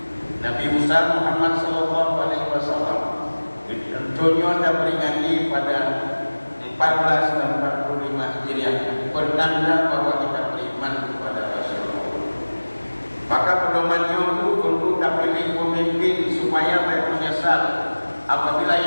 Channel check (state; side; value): inverted; both; correlation -1.00